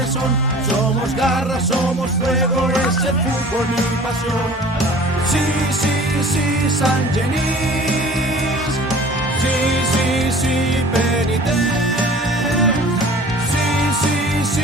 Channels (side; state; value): both; normal; correlation 0.45